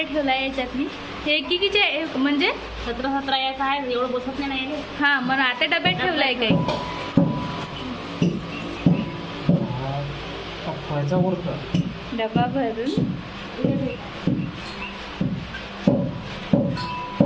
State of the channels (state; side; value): identical; both; correlation 1.00